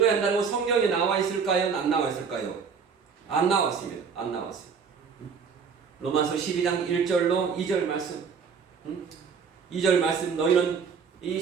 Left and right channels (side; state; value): left; quieter; 6.0 dB